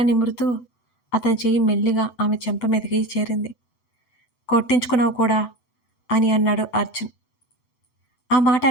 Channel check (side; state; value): right; late; 8.0 ms